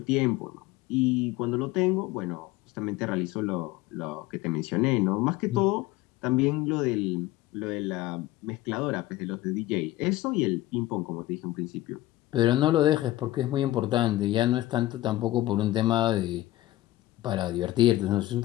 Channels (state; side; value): quieter; right; 16.4 dB